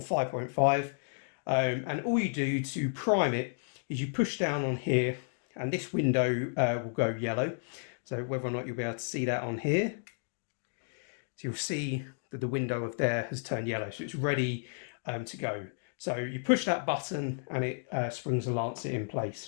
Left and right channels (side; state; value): right; silent; digital silence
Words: 5.5. And all you do to prime it is you push down on here, and this window will go yellow. So whether or not you'll be able to see that on here. So you'll see that the window of there has turned yellow, so it's ready to go. So you push that button and it springs the lancet in